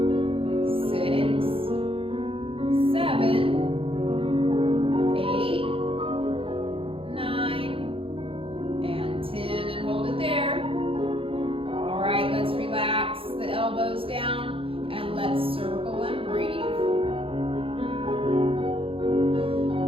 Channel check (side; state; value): left; late; 0.27 ms